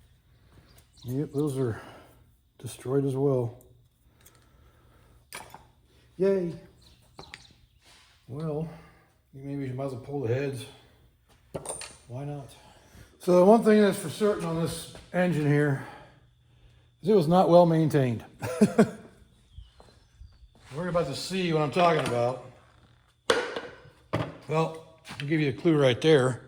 Yep, those are destroyed as well. Yay. Well, maybe you might as well pull the heads. Why not? So the one thing that's for certain on this engine here is it was not well maintained. We're about to see what I'm talking about. Well, I'll give you a clue right there.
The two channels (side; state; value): both; identical; correlation 1.00